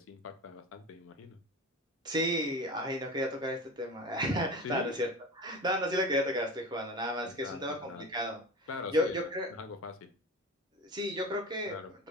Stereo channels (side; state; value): both; normal; correlation 0.31